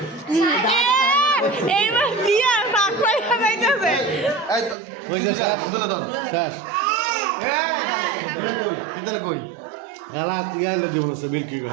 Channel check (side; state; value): left; drops out; at 4.8 s